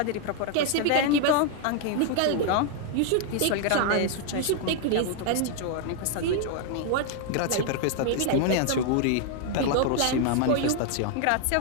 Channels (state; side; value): different; both; correlation 0.00